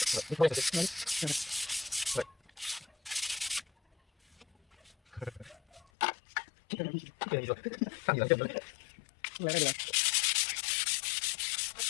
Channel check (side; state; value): right; drops out; at 5.8 s